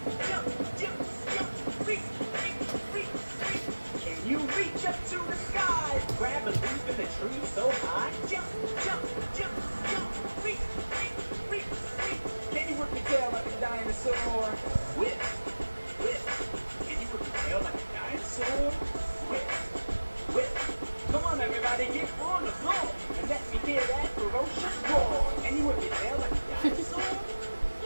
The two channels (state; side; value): inverted; both; correlation -1.00